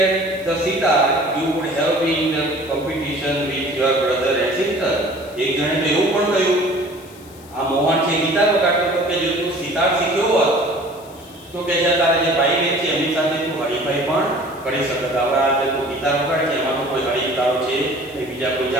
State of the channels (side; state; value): left; noise; hiss, 23 dB below the sound